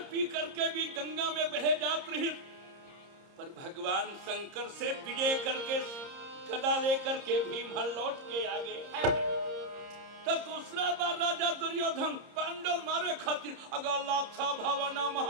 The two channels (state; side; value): late; left; 30 ms